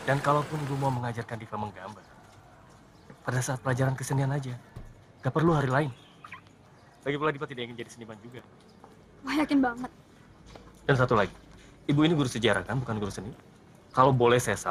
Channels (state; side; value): identical; both; correlation 1.00